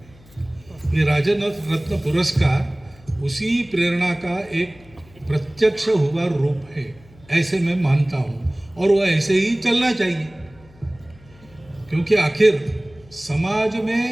में। ये राजन रत्न पुरस्कार उसी प्रेरणा का एक प्रत्यक्ष हुआ रूप है, ऐसे मैं मानता हूँ, और वो ऐसे ही चलना चाहिए, क्योंकि आखिर समाज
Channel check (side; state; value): left; noise; hum, 26 dB below the sound